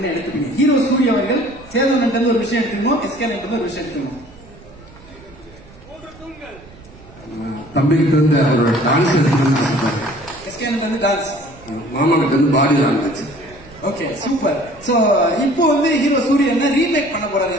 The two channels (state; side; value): noise; right; rumble, 22 dB below the sound